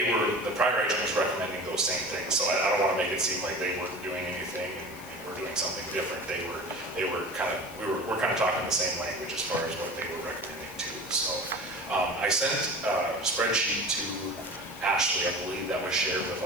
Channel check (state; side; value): noise; left; hiss, 18 dB below the sound